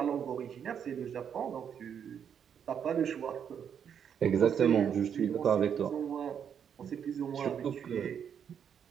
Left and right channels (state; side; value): quieter; left; 8.1 dB